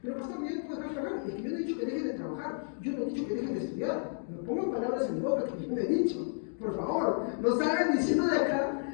Pero pastor, yo no puedo dejar de trabajar. Es que yo no he dicho que dejen de trabajar, yo no he dicho que dejen de estudiar. No pongan palabras en mi boca que yo no he dicho. Por favor, no salgan diciendo de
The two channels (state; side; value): silent; right; digital silence